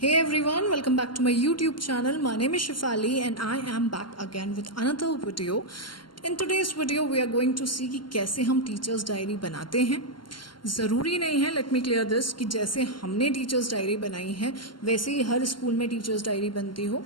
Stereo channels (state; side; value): late; right; 0.72 ms